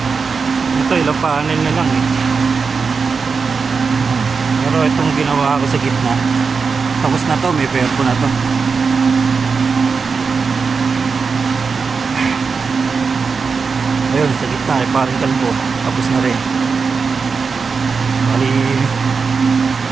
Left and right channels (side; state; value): left; quieter; 5.1 dB